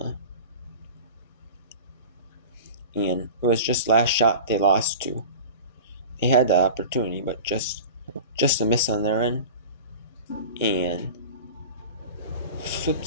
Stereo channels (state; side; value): inverted; both; correlation -0.35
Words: and it was just last shot they lost to. They had the opportunity, but just a miss on their end. And